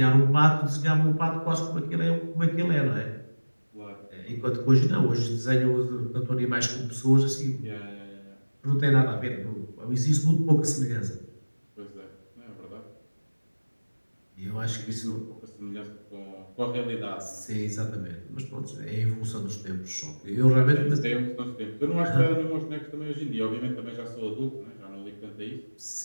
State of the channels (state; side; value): inverted; both; correlation -1.00